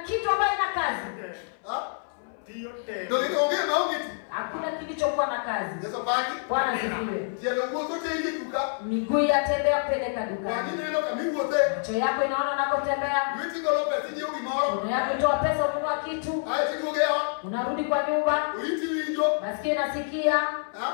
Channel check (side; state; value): right; silent; 59 dB below the other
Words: ambacho ina kazi. Hakuna kilichokuwa na kazi. Bwana asifiwe. Miguu yatembea kupeleka dukani. Macho yako inaona nakotembea. Mikono yako itoa pesa ununua kitu. Unarudi kwa nyumba. Masikio nasikia.